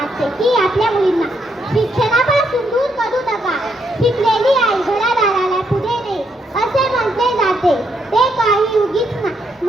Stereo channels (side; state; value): both; normal; correlation 0.76